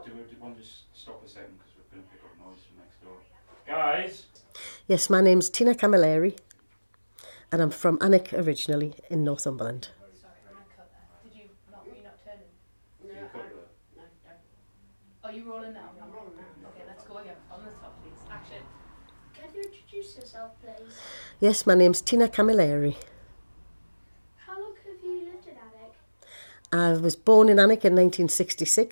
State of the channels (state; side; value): inverted; both; correlation -1.00